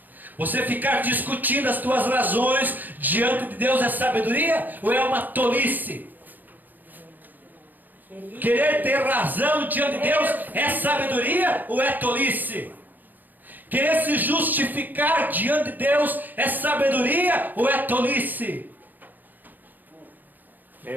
Você ficar discutindo as tuas razões diante de Deus é sabedoria? Ou é uma tolice? Querer ter razão diante de Deus é sabedoria ou é tolice? Querer se justificar diante de Deus é sabedoria ou é tolice?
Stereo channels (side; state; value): left; late; 0.086 ms